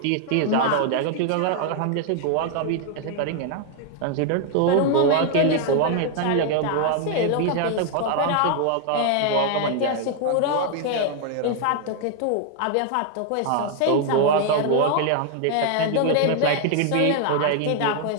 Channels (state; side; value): different; both; correlation 0.00